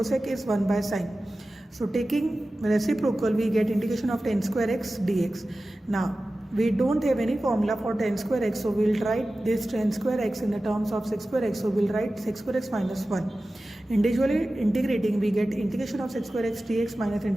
is 1 by sin. So taking reciprocal we get integration of tan square x dx. Now we don't have any formula for tan square x, so we'll write this tan square x in the terms of sec square x. So we'll write sec square x minus 1. Individually integrating we get integration of sec square x dx minus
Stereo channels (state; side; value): normal; both; correlation 0.95